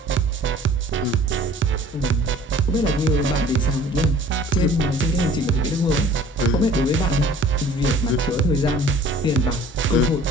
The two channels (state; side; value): normal; both; correlation 0.50